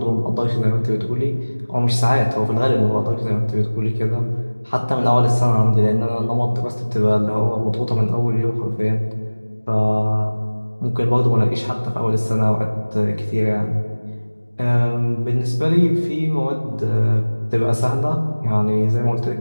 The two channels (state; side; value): inverted; both; correlation -1.00